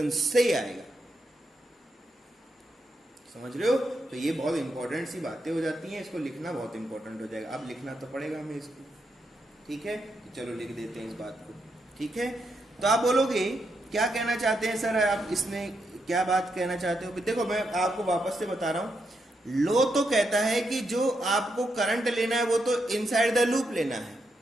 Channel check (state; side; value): normal; both; correlation 0.82